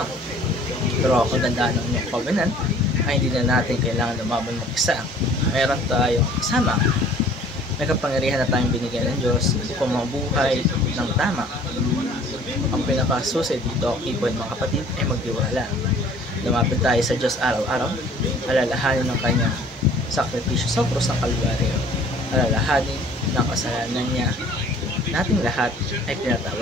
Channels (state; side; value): normal; both; correlation 0.52